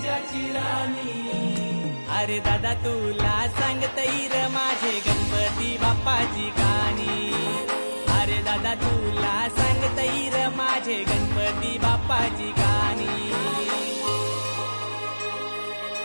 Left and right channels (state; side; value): inverted; both; correlation -1.00